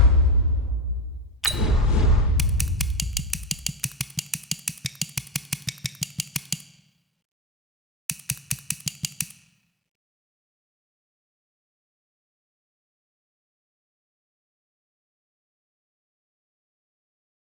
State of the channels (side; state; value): both; normal; correlation 0.14